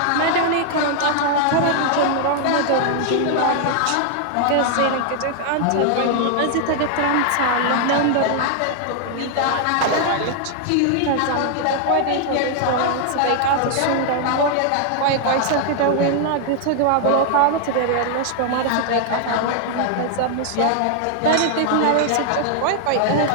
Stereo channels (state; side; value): different; both; correlation 0.00